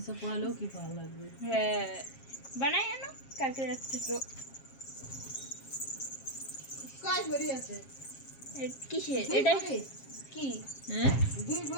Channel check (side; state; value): right; late; 7.4 ms